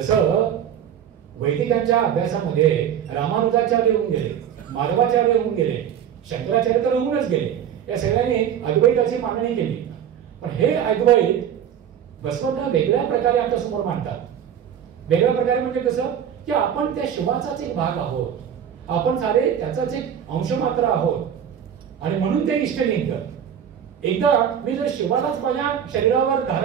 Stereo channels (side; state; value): left; quieter; 9.1 dB